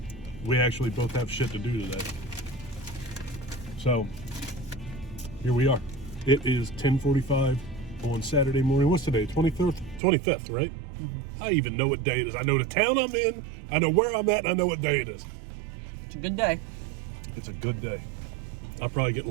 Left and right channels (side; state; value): left; drops out; at 10.0 s